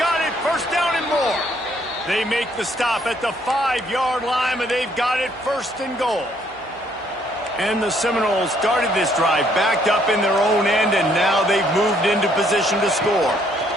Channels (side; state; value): both; normal; correlation 0.67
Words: got it, 1st down and more. They make the stop at the 5-yard line, and they've got it 1st and goal. And the Seminoles started this drive backed up in their own end, and now they've moved into position to score.